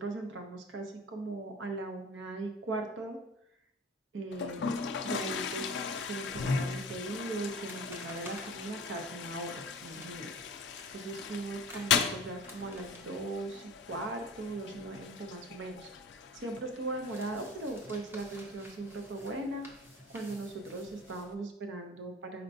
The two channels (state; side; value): normal; both; correlation 0.38